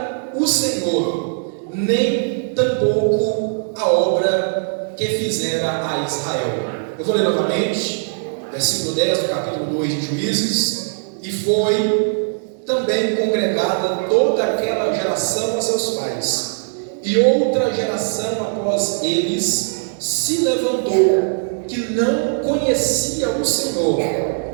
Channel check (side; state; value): left; silent; digital silence